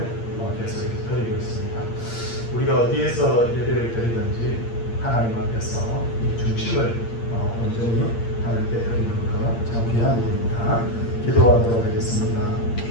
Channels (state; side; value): late; right; 8.7 ms